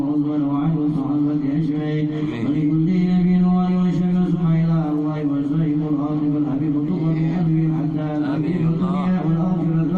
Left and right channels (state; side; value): identical; both; correlation 1.00